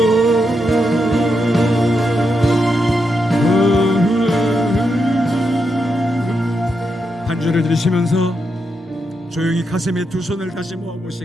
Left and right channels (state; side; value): normal; both; correlation 0.84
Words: 한 주를 들으시면서 조용히 가슴에 두 손을 다시